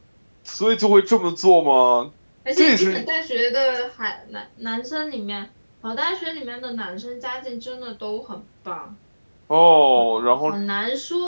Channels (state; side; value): inverted; both; correlation -1.00